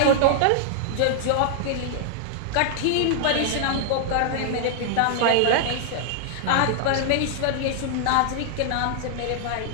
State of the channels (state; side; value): different; both; correlation -0.01